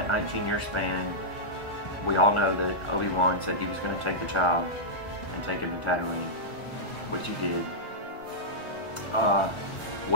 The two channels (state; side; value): late; right; 1.8 ms